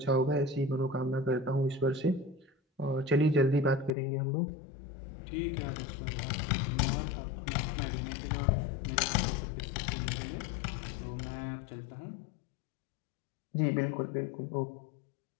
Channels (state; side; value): drops out; right; at 3.9 s